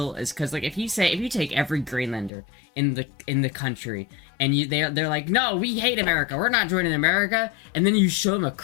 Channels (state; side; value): drops out; right; at 2.3 s